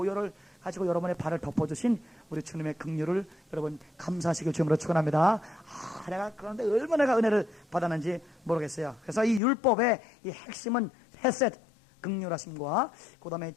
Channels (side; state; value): right; drops out; at 9.4 s